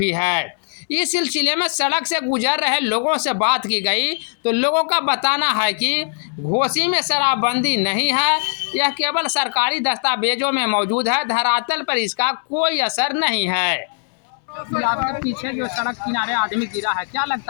है। इस सिलसिले में सड़क से गुजर रहे लोगों से बात की गई तो लोगों का बताना है कि घोसी में शराबबंदी नहीं है, यह केवल सरकारी दस्तावेजों में मौजूद है, धरातल पर इसका कोई असर नहीं है। आपके पीछे जो सड़क किनारे आदमी गिरा है, क्या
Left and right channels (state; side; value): silent; right; 66 dB below the other